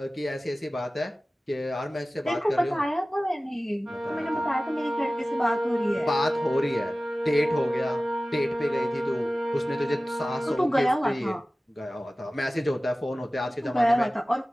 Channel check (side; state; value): both; normal; correlation 0.97